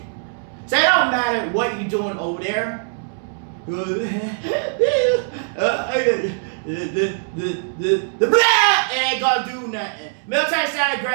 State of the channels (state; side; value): silent; left; 65 dB below the other